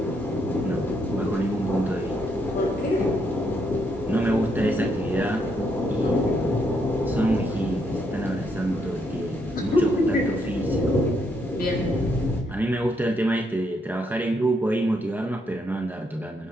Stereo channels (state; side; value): normal; both; correlation 0.76